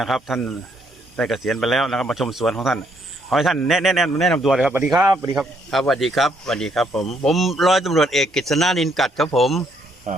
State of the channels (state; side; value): normal; both; correlation 0.71